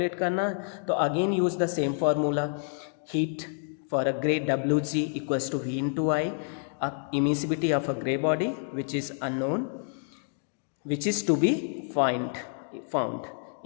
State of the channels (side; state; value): right; silent; 59 dB below the other